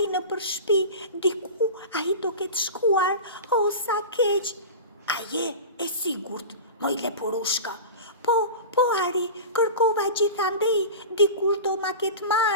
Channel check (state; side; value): inverted; both; correlation -0.30